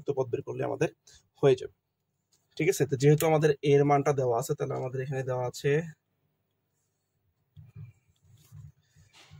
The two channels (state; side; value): identical; both; correlation 1.00